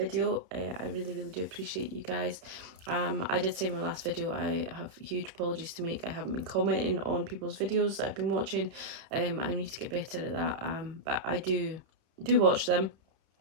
I really do appreciate you guys. I did say in my last video I have huge apologies to make. I haven't been commenting on people's videos that I've been watching. I need to get better at that, but I do watch them.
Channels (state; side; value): late; left; 31 ms